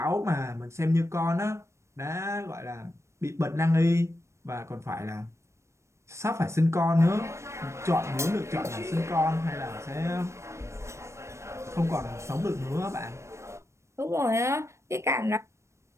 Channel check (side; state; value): left; late; 0.13 ms